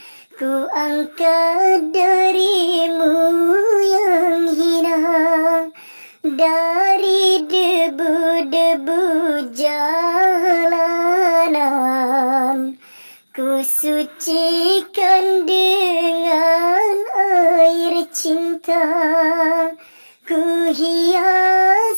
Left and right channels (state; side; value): inverted; both; correlation -1.00